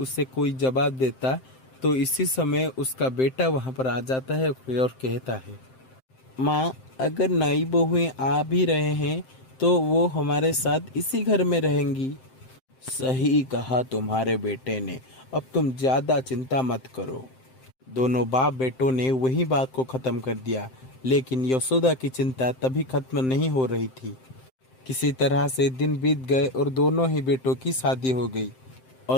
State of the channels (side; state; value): right; late; 7.7 ms